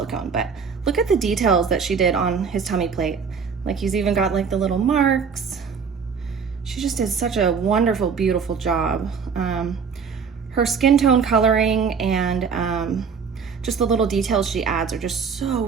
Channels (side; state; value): left; quieter; 6.0 dB